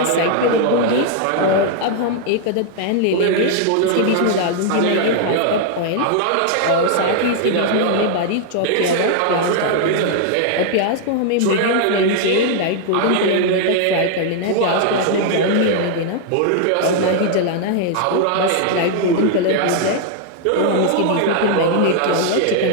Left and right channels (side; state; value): both; different; correlation 0.00